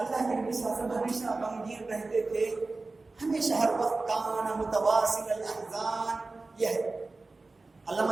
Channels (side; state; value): left; quieter; 3.5 dB